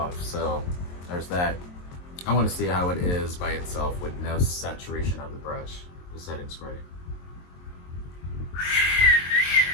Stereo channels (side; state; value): right; late; 22 ms